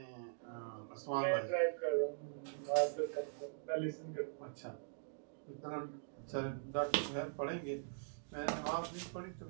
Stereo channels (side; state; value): left; silent; digital silence